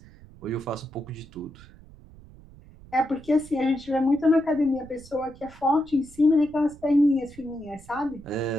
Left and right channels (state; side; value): noise; right; rumble, 21 dB below the sound